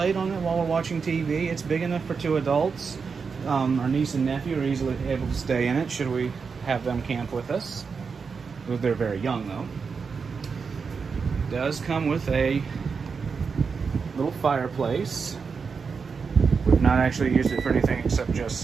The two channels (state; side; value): quieter; left; 5.4 dB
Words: on it while we're watching TV. It's big enough for 2 adults. Our niece and nephew are easily able to stay in it should we have them camp with us. They're very young though. It does come with a little fireplace. We've not actually used it for anything except